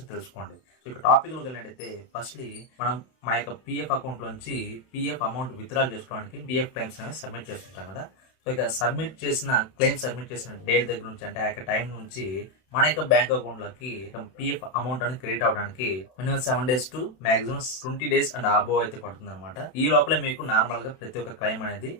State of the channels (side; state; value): right; late; 31 ms